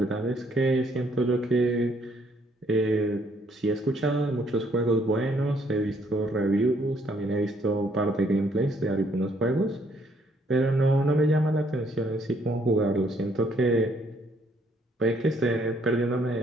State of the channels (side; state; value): both; normal; correlation 0.67